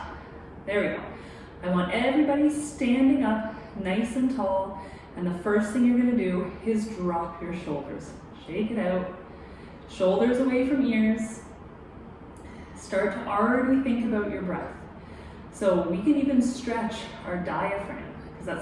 there we go. I want everybody standing up nice and tall, and the first thing you're going to do is drop your shoulders. Shake it out. Shoulders away from ears. Start to already think about your breath. So we can even stretch our diaphragm, because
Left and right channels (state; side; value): identical; both; correlation 1.00